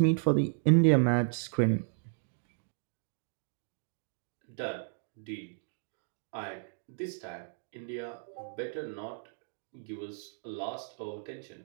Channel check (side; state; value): left; silent; digital silence